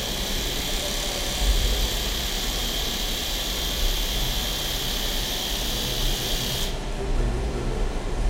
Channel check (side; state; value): both; identical; correlation 1.00